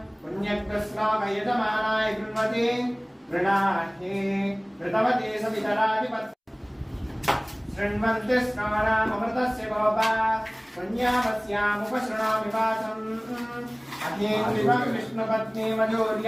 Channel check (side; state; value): both; identical; correlation 1.00